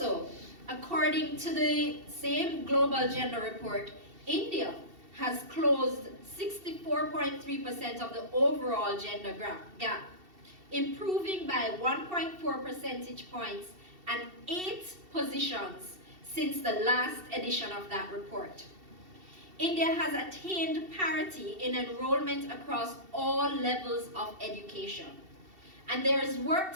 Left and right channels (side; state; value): left; late; 2.7 ms